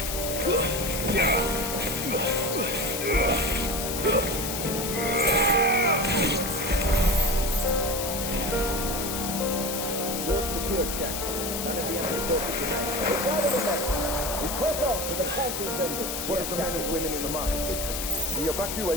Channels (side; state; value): left; noise; hiss, 4 dB below the sound